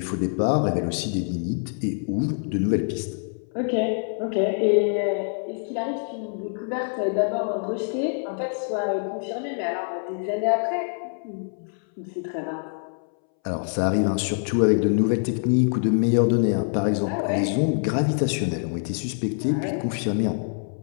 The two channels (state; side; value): silent; right; 62 dB below the other